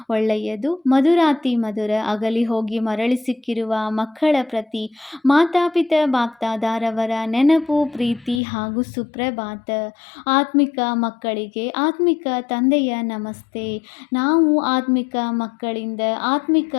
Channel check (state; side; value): drops out; right; at 8.4 s